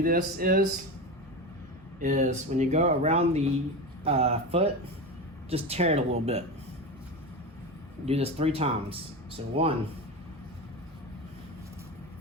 this is when you go around the foot, just tear it a little bit. Do this 3 times. So 1,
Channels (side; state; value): both; normal; correlation 0.22